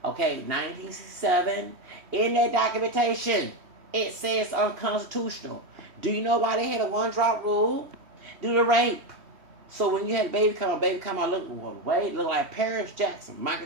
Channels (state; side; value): late; left; 3.1 ms